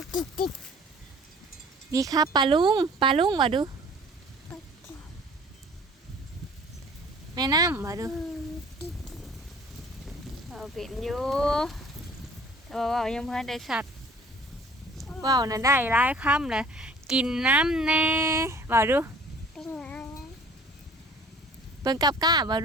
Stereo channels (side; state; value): both; normal; correlation 0.51